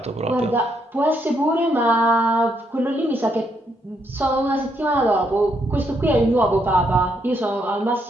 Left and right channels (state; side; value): normal; both; correlation 0.75